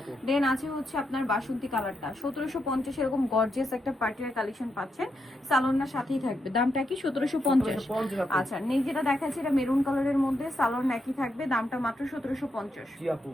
দেন আছে হচ্ছে আপনার বাসন্তী কালারটা 1750। এরকম গর্জিয়াস একটা পার্টির কালেকশন পাচ্ছেন, সালোয়ারটার সাথেই থাকবে। দামটা কি? 1750। আচ্ছা, নেই যেটা দেখাচ্ছে এটা মেরুন কালারের মধ্যে, সালোয়ার একই থাকবে, দামটা মাত্র 1750। জি আপু।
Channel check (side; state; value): both; normal; correlation 0.82